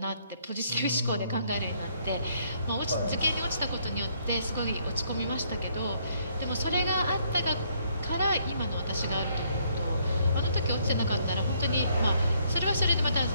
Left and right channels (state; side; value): inverted; both; correlation -0.69